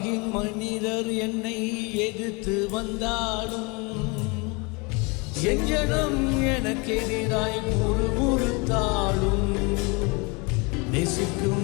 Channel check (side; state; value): right; quieter; 29.2 dB